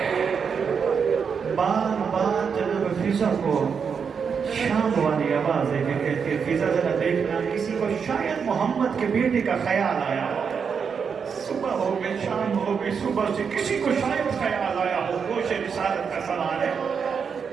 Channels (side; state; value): left; quieter; 6.4 dB